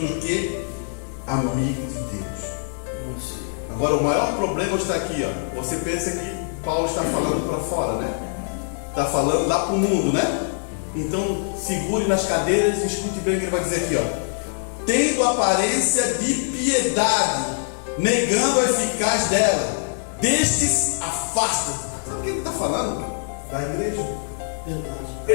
que amigo de Deus. Agora o maior problema está aqui, ó. Você pensa que Paulo está falando para fora, né? Está falando lá para o mundo, né? Então segure nas cadeiras e escute bem o que ele vai dizer aqui, ó. Tendo aparência de piedade, negando a eficácia dela, destes afasta. Sabe o que ele está falando? Da igreja.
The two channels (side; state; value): right; silent; digital silence